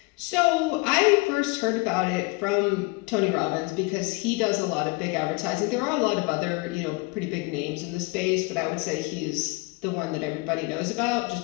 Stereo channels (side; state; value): right; quieter; 27.0 dB